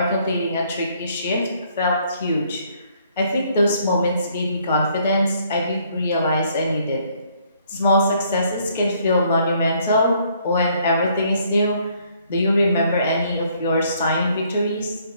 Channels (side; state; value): both; inverted; correlation -0.66